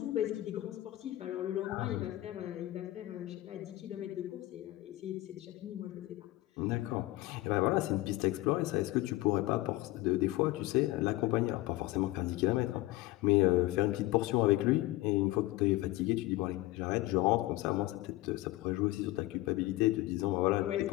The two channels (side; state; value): right; quieter; 18.1 dB